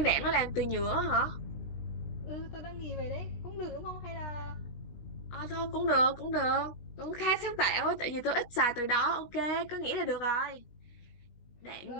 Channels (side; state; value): right; late; 17 ms